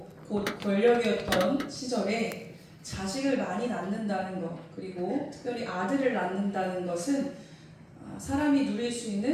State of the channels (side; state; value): both; identical; correlation 1.00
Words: 곧 권력이었던 시절에 자식을 많이 낳는다는 것, 그리고 특별히 아들을 낳는다는 것은 사람이 누릴 수